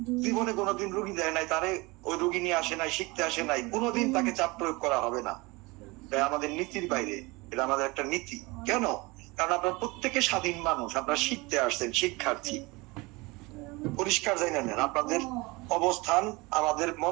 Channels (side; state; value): left; quieter; 24.3 dB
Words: জীবনে কোনোদিন রুগী দেয় নাই, তারে ওই রুগী নিয়ে আসে নাই, শিখতে আসে নাই, কোনোদিন তাকে চাপ প্রয়োগ করা হবে না। তাই আমাদের নীতির বাইরে, এটা আমাদের একটা নীতি। কেন? কারণ আপনারা প্রত্যেকে স্বাধীন মানুষ, আপনারা শিখতে আসছেন, শিক্ষার্থী। পরিষ্কার জানি নেন আপনাদের অবস্থান, আমাদের